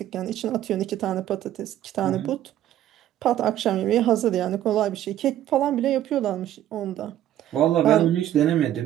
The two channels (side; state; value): left; quieter; 12.2 dB